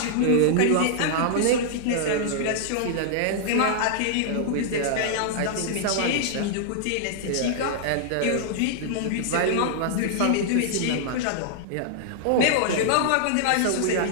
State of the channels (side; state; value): both; different; correlation -0.01